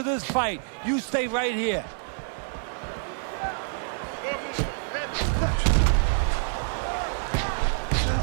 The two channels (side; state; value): left; silent; 60 dB below the other